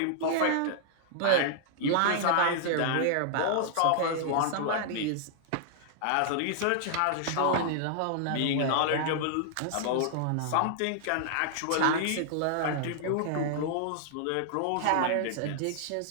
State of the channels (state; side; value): different; both; correlation -0.01